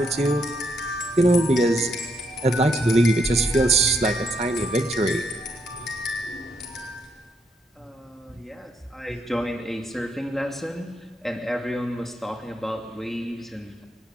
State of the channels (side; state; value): both; normal; correlation 0.77